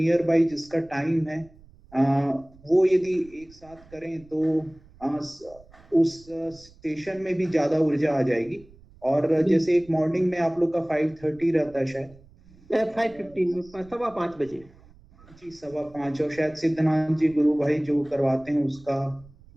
बाई जिसका टाइम है, अ, वो यदि एक साथ करें तो उस स्टेशन में भी ज्यादा ऊर्जा आ जाएगी। और जैसे एक मॉर्निंग में आप लोग का 5:30 रहता है शायद, 5:15 में, 5:15 जी 5:15, और शायद सिद्धनाथ जी गुरु भाई जो करवाते हैं उसका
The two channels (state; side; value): noise; right; rumble, 25 dB below the sound